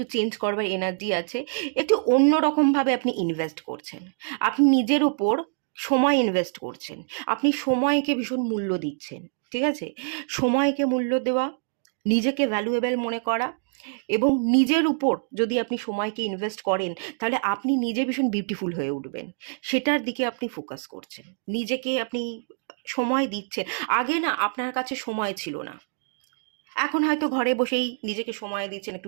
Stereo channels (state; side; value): silent; left; digital silence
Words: চেঞ্জ করবার এনার্জি আছে, একটু অন্যরকমভাবে আপনি ইনভেস্ট করছেন, আপনি নিজের ওপর সময় ইনভেস্ট করছেন, আপনি সময়কে ভীষণ মূল্য দিচ্ছেন, ঠিক আছে? সময়কে মূল্য দেওয়া, নিজেকে ভ্যালুয়েবল মনে করা, এবং নিজের উপর যদি আপনি সময়কে ইনভেস্ট করেন, তাহলে আপনি নিজে ভীষণ বিউটিফুল হয়ে উঠবেন, সেটার দিকে আপনি ফোকাস করছেন, নিজেকে আপনি সময় দিচ্ছেন। আগে না আপনার কাছে সময় ছিল না, এখন হয়তো ঘরে বসেই নিজেকে সময় দিচ্ছেন,